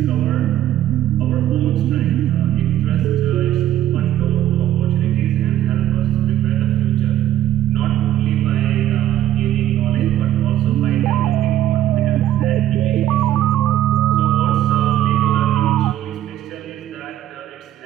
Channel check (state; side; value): quieter; left; 12.2 dB